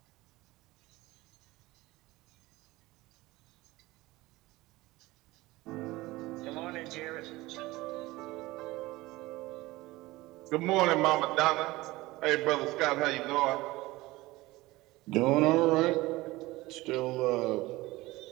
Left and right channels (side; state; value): left; quieter; 19.6 dB